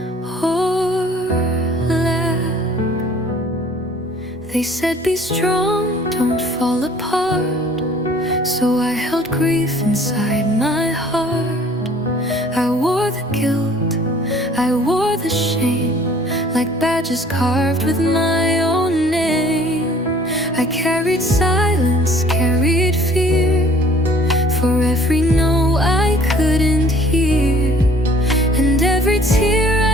or lack. They said be strong, don't fall apart. So I held grief inside my heart. I wore the guilt, I wore the shame, like badges carved with my own name. I carried silence, carried fear, for every no I couldn't hear. And every tear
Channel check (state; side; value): normal; both; correlation 0.54